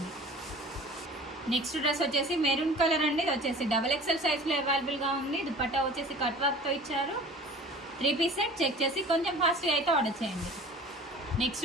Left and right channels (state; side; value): normal; both; correlation 0.44